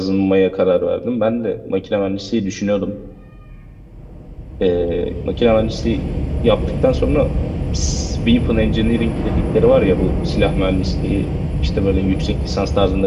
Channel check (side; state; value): both; identical; correlation 1.00